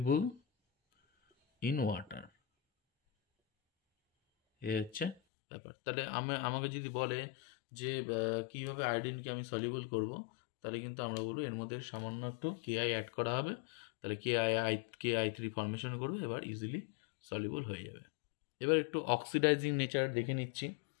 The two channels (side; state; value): right; drops out; at 5.2 s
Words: ইন ওয়াটার, এ হচ্ছে ব্যাপার। তাহলে আমাকে যদি বলে যে কীভাবে আয়োডিনকে আমি সলিউবল করব, তাহলে কিন্তু আমরা বলবো এর মধ্যে সামান্য একটু Ki অ্যাড করা হবে, তাহলে Ki3 ফর্মেশন করবে, এবার ইজিলি সলিউবল হয়ে যাবে। এবার একটু অক্সিডাইজিং নেচার দেখে নিচ্ছি।